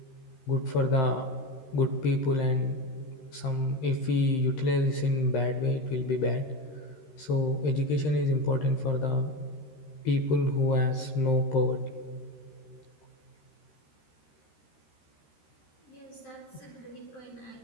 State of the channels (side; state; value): right; late; 13 ms